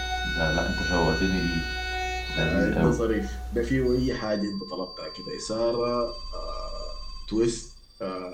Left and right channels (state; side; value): identical; both; correlation 1.00